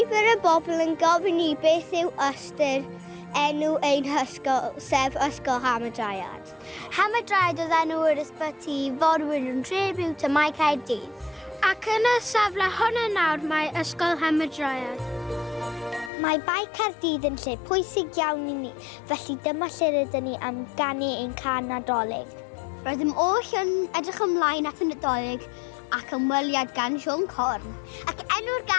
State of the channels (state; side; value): drops out; right; at 16.1 s